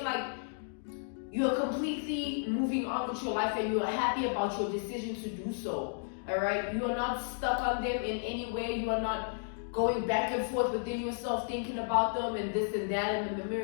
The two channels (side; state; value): right; silent; digital silence